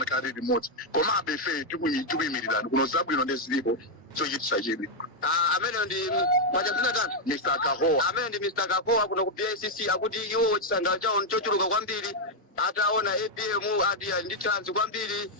limodzi komabe ife tikuyimirirani kuno zabwino ndezilipo chochitisa chidwi amene ndi mwachazina tatu Mr. Kahowa amene ndi Mr. Kahowa kuno ku PICC akuti iwo chisangalo chawo chochuluka kwambiri ataona APM adi ndi chance kwambiri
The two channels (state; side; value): normal; both; correlation 0.00